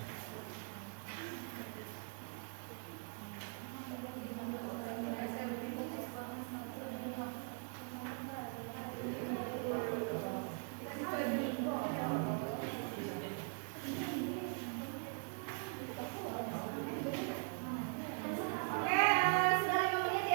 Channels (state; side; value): silent; left; 50 dB below the other